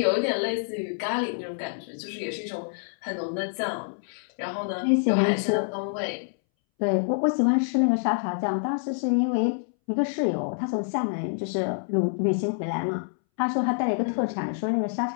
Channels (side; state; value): right; silent; 60 dB below the other